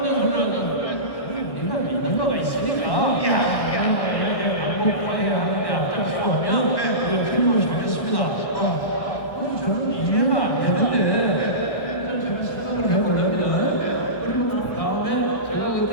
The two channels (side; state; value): right; late; 1.1 ms